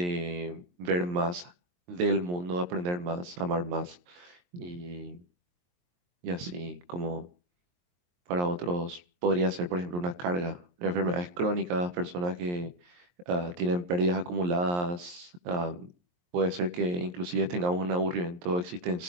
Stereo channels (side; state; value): left; late; 23 ms